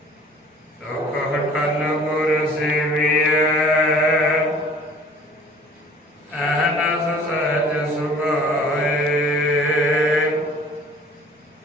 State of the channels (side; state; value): both; normal; correlation 0.49